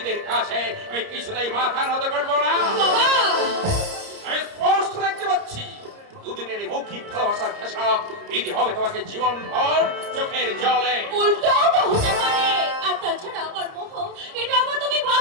কাছে আমি কিছুতেই মাথা নত করবো না। বাবা আমি স্পষ্ট দেখতে পাচ্ছি দুদিনের এই মৌখিক ভালোবাসার খেসাব দিতে হবে তোমাকে জীবনভর চোখের জলে। উল্টাও তো হতে পারে। আর তাছাড়া আমার মোহ, এটা আবার তুমি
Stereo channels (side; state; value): left; late; 30 ms